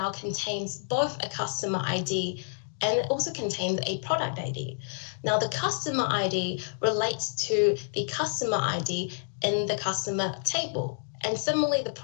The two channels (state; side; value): silent; right; digital silence